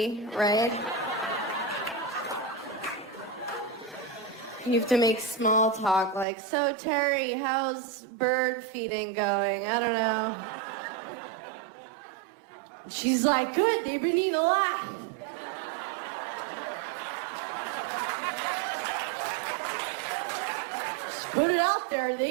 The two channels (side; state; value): left; drops out; at 6.2 s